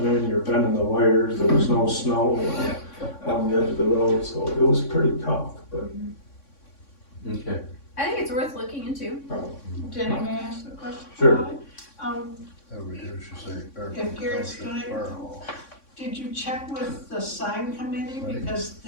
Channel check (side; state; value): right; late; 3.6 ms